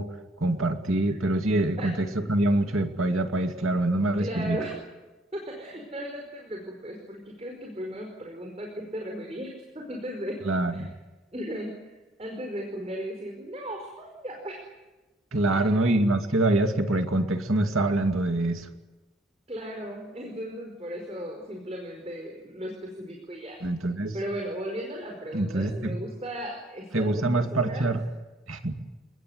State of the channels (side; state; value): both; normal; correlation 0.63